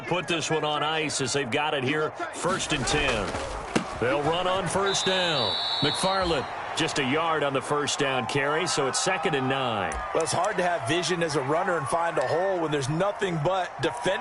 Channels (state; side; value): identical; both; correlation 1.00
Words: put this one on ice as they've got it here, 1st and 10. They'll run on first down. McFarland just a yard on the first down carry, so it's 2nd and 9. Well, it's hard to have vision as a runner and find a hole when there's nothing but